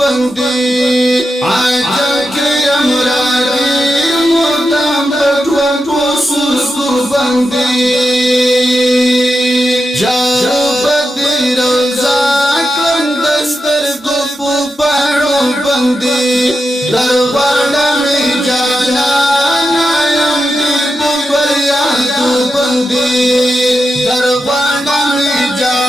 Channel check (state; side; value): normal; both; correlation 0.88